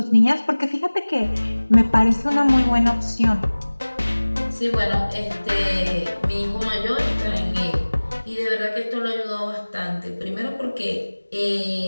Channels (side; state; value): both; inverted; correlation -1.00